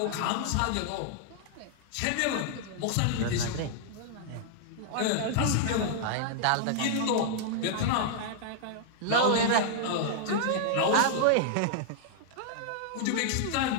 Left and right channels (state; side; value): different; both; correlation -0.01